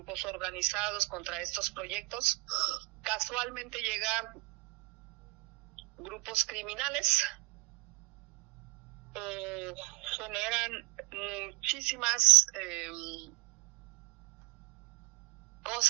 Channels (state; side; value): quieter; left; 28.2 dB